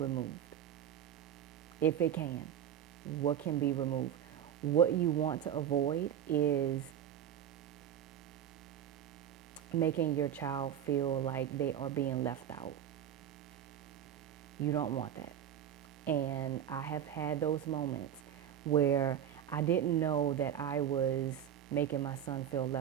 If it can, what can be removed? What you want to avoid is making your child feel like they are being left out. You don't want that. And I have had those moments where I didn't know that I was making my son feel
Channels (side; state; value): left; quieter; 9.8 dB